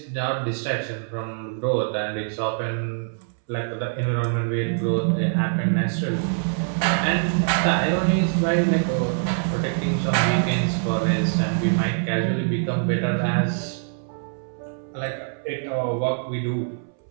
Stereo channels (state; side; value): silent; left; 63 dB below the other